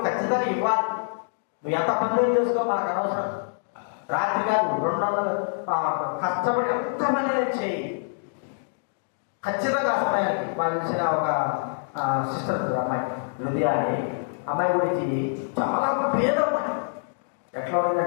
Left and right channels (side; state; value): right; silent; digital silence